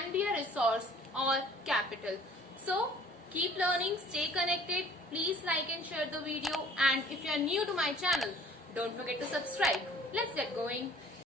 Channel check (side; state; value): both; normal; correlation 0.52